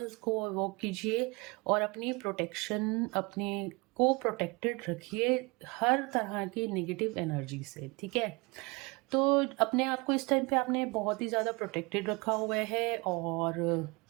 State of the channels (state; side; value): quieter; left; 27.6 dB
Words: को वॉक कीजिए और अपनी प्रोटेक्शन, अपने को प्रोटेक्टेड रखिए हर तरह की नेगेटिव एनर्जी से, ठीक है। तो अपने आप को इस टाइम पे आपने बहुत ही ज़्यादा प्रोटेक्टेड रखा हुआ है और